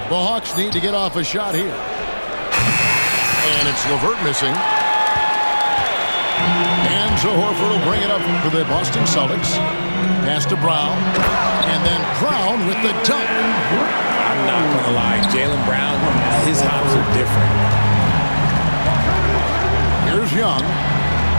The Hawks need to get off a shot here. And it's LeVert missing. And Horford will bring it up for the Boston Celtics. Pass to Brown. And then Brown with the dunk. I'm not going to lie. Jaylen Brown, his hops are different. Here's Young.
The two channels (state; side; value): inverted; both; correlation -1.00